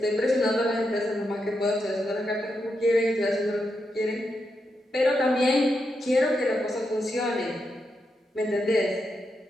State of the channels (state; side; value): normal; both; correlation 0.85